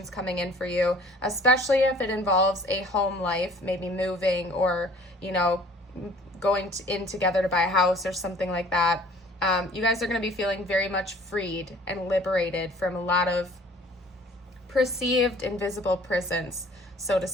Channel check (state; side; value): normal; both; correlation 0.52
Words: coming in for you, especially if it involves a home life, maybe moving or, going in together to buy a house or something like that. You guys are going to be feeling very much freed and liberated from a lot of perceived invisible prisons, so to